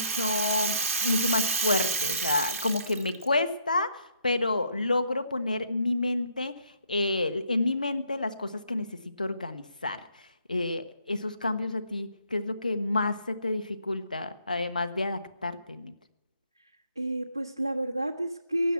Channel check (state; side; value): inverted; both; correlation -0.69